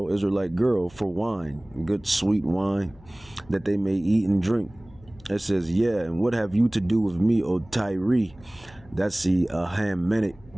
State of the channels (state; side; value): noise; left; hum, 24 dB below the sound